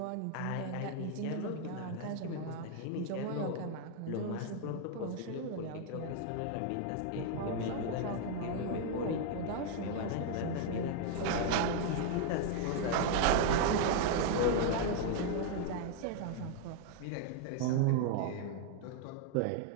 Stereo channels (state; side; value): different; both; correlation 0.00